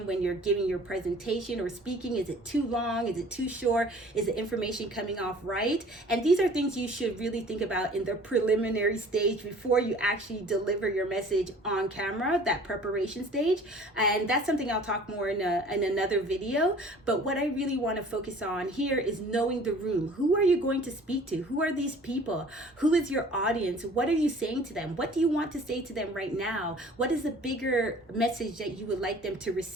when you're giving your presentation or speaking. Is it too long? Is it too short? Is the information coming off right? And these are things you should really think about in the preliminary stage before you actually deliver your message on camera, that preparation stage. And that's something I'll talk more in another video. But what I really want to focus on here is knowing the room. Who are you going to speak to? Who are these people? Who is your audience? What are you saying to them? What do you want to say to them right now? What is the bigger message that you would like them to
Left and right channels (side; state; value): both; normal; correlation 0.49